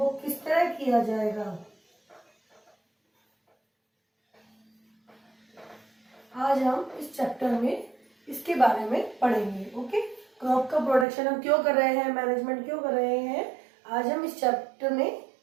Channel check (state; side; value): drops out; left; at 11.1 s